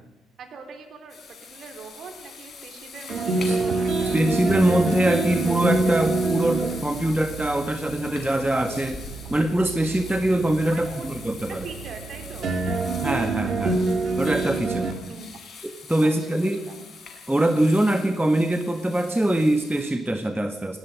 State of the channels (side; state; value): both; normal; correlation 0.88